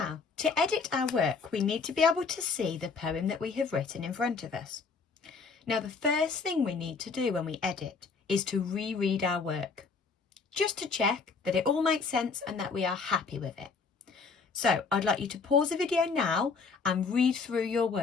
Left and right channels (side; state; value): right; quieter; 4.8 dB